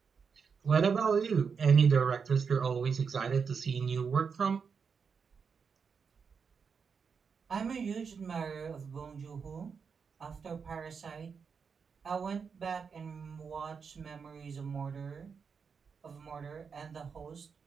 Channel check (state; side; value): quieter; left; 5.9 dB